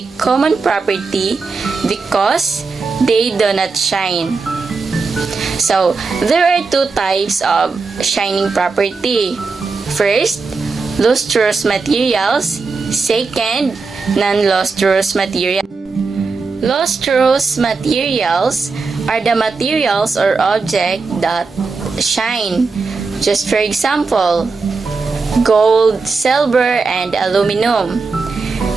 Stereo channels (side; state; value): left; quieter; 4.4 dB